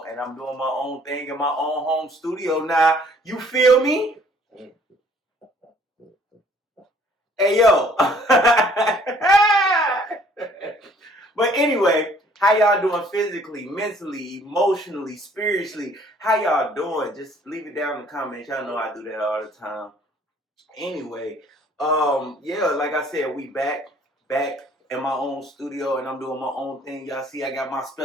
And I'm doing my own thing in my own home studio now. You feel me? Hey, yo. But anyway, how y'all doing physically, mentally, emotionally, spiritually? How y'all doing? Just leave it down in the comments. Y'all know I do that all the time. Anyway, yeah, like I said, we back in my own studio, and I'm doing my own thing. Y'all see, I got my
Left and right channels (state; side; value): normal; both; correlation 0.58